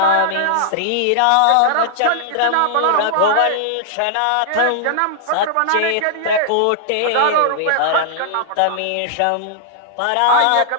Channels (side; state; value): both; different; correlation -0.01